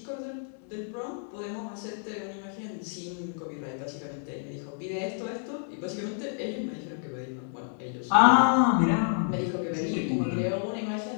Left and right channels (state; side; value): silent; right; digital silence